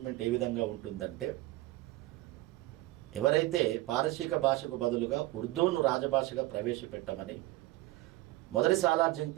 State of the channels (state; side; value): quieter; left; 18.5 dB